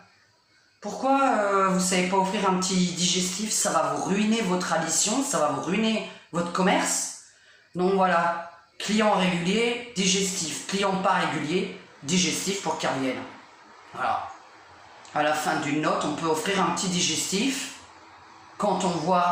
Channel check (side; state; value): both; identical; correlation 1.00